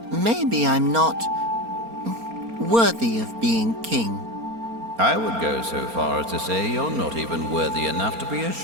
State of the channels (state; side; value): late; left; 4.3 ms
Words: maybe I'm not worthy of being king. I would go so far as to say you're not even worthy enough to be a